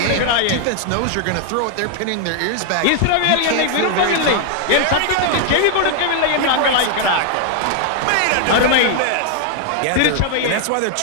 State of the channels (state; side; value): different; both; correlation 0.00